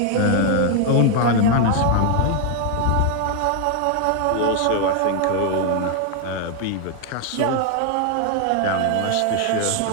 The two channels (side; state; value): both; different; correlation 0.00